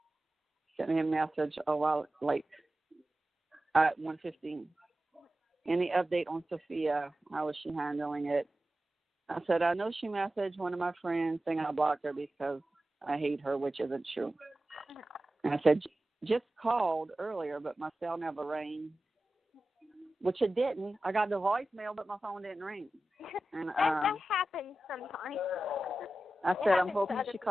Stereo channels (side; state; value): both; normal; correlation 0.94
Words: sent me a message at 1:15. Any update on Sophia? How is she handling it? I said, I know she messaged one of my friends saying I blocked her because I hate her, which isn't true. And I said, just called earlier, but my cell never rang, which it didn't. I got the voicemail, but my phone didn't ring. And that happens sometimes. I said, I'm hoping she